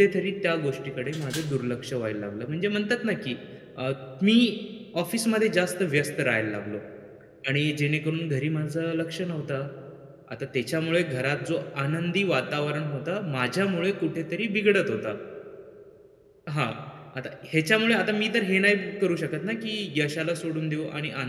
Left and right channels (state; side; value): identical; both; correlation 1.00